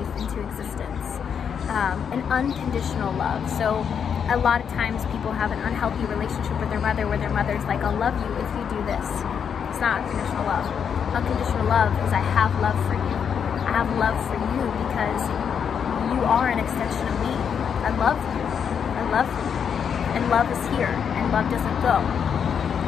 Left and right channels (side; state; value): right; quieter; 7.4 dB